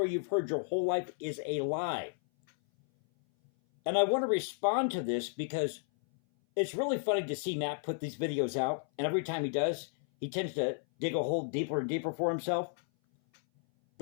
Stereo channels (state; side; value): silent; right; 56 dB below the other